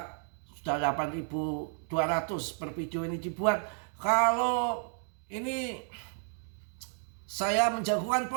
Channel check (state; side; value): silent; left; 56 dB below the other